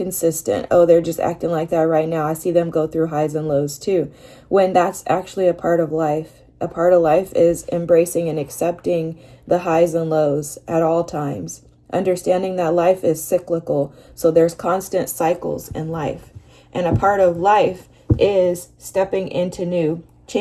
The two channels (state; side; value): identical; both; correlation 1.00